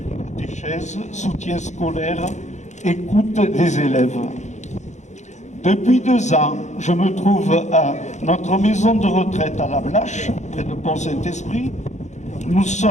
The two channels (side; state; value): right; late; 0.34 ms